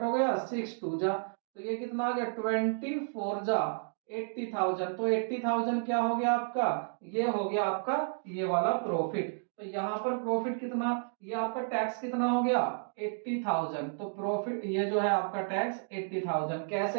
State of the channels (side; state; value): left; silent; digital silence